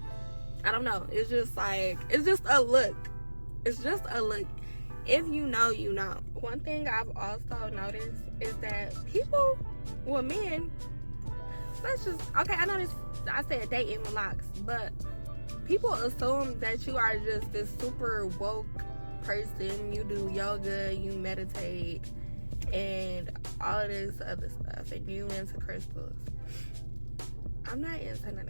I don't know, it's just like, it's just a look. It's just a look. If you know, you know. One thing I've also noticed is that people, well, men, let's just, okay, I know this, I said dating with Locs, but people assume that you are just this super woke person. You do yoga, you meditate, and all of this other stuff, and you into crystals. I'm not into none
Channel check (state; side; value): inverted; both; correlation -1.00